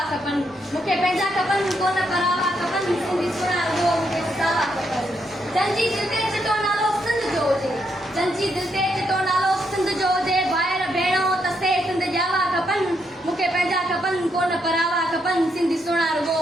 खपनि। मूंखे पंहिंजा खपनि कोन परावा खपनि, सिंधी सोना रुगो मूंखे सावा खपनि। जंहिंजी दिलि ते चिटो नालो सिंध जो हुजे, जंहिंजी दिलि ते चिटो नालो सिंध जो हुजे, ॿाहिरि भेणो तसे सिंध ॼावा खपनि। मूंखे पंहिंजा खपनि कोन परावा खपनि, सिंधी सोना रुगो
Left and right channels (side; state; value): both; normal; correlation 0.78